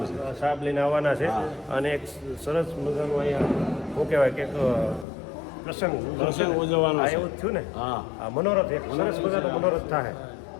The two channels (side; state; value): right; drops out; at 5.1 s